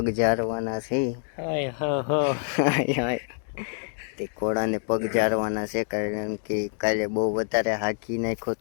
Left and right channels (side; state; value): right; silent; 61 dB below the other